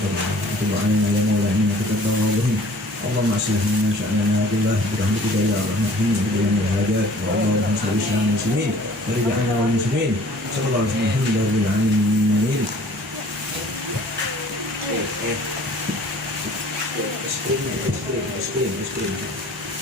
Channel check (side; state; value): both; normal; correlation 0.51